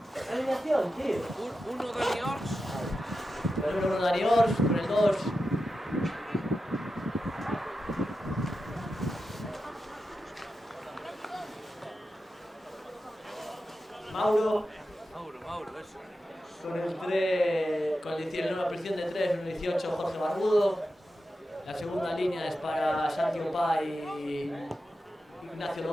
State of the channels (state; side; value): normal; both; correlation 0.90